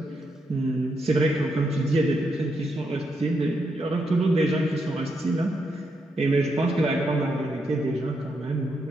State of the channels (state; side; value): normal; both; correlation 0.80